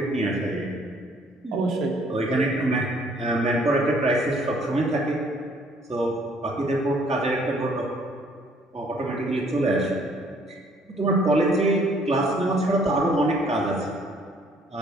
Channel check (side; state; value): both; normal; correlation 0.62